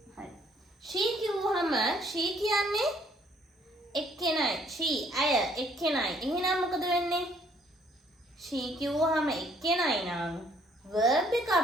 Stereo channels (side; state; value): both; normal; correlation 0.63